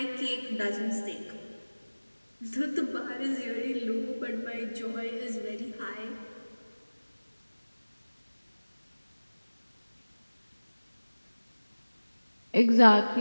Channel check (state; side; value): inverted; both; correlation -1.00